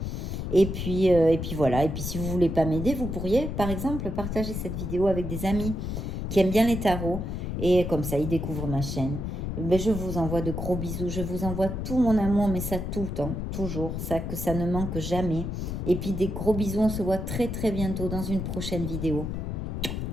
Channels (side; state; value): left; noise; rumble, 4 dB below the sound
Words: Et puis voilà. Et puis si vous voulez pas m'aider, vous pourriez par exemple partager cette vidéo avec des amis qui aiment bien les tarots. Et comme ça, ils découvrent ma chaîne. Ben, je vous envoie de gros bisous. Je vous envoie tout mon amour, mais ça tout le temps, toujours. Ça, que ça ne manque jamais. Et puis des gros bisous. On se voit très très bientôt dans une prochaine vidéo.